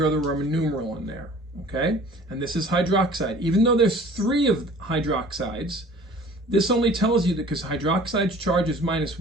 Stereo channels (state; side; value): normal; both; correlation 0.48